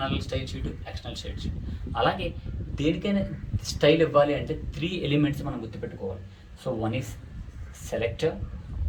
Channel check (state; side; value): identical; both; correlation 1.00